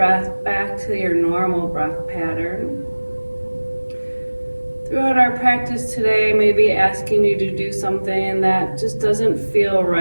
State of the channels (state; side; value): inverted; both; correlation -1.00